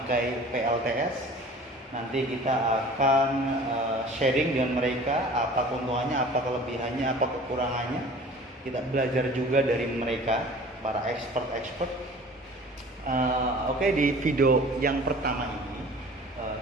PLTS. Nanti kita akan sharing dengan mereka apa keuntungannya, apa kelebihannya, apa kekurangannya. Kita belajar juga dari mereka, para expert. Oke, di video yang pertama ini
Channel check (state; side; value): normal; both; correlation 0.44